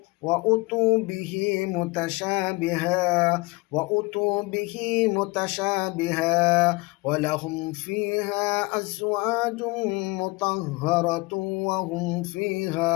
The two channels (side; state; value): right; quieter; 24.3 dB